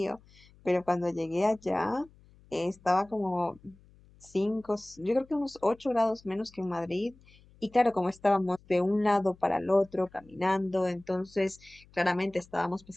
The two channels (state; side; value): noise; left; hum, 27 dB below the sound